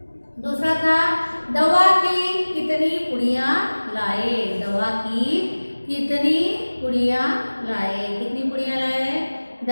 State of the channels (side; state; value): both; inverted; correlation -1.00